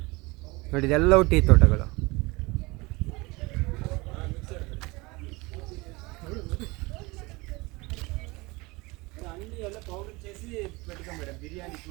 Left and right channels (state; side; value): quieter; left; 24.2 dB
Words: ನೋಡಿ. ಇದೆಲ್ಲವೂ ಟೀ ತೋಟಗಳು.